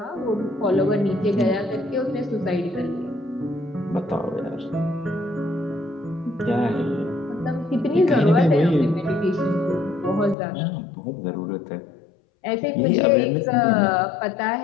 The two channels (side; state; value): right; drops out; at 10.4 s